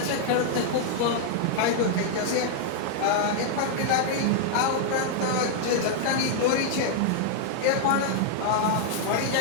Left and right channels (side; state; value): both; different; correlation 0.00